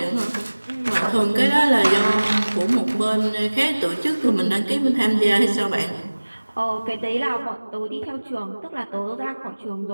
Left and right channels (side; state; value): both; inverted; correlation -1.00